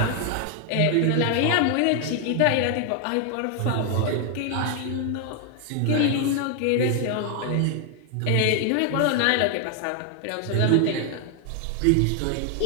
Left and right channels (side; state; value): both; different; correlation 0.00